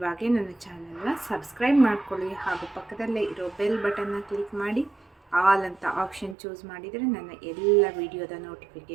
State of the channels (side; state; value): left; drops out; at 6.4 s